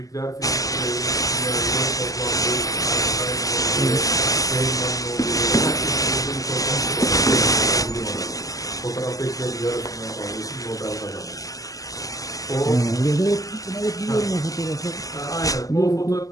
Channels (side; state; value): right; late; 0.17 ms